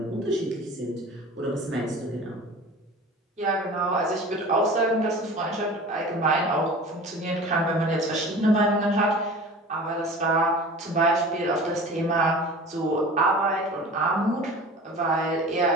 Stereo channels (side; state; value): both; normal; correlation 0.39